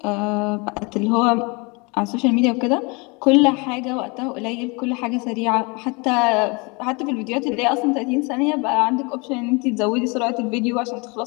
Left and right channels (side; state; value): right; quieter; 28.9 dB